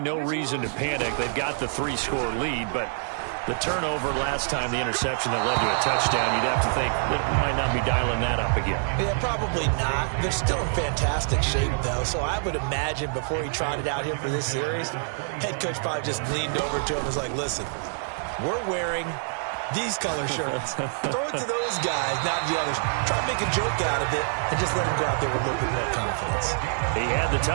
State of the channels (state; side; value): silent; left; 61 dB below the other